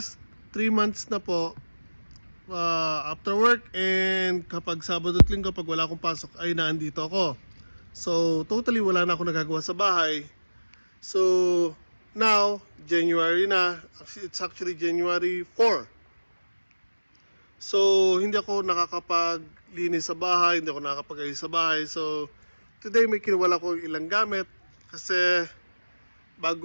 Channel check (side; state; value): both; inverted; correlation -1.00